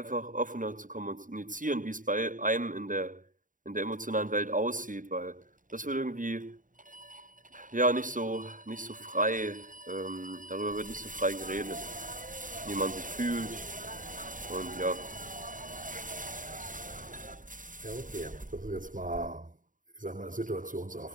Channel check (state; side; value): late; left; 0.38 ms